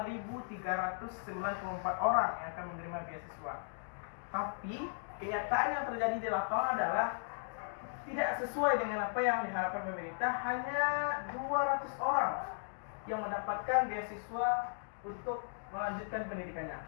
orang yang akan menerima beasiswa. Tapi kenyataan yang terjadi di lapangan adalah tidak sesuai dengan apa yang diharapkan pemerintah. Hanya 200 orang yang mendapatkan beasiswa untuk melanjutkan pendidikannya.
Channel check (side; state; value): right; silent; digital silence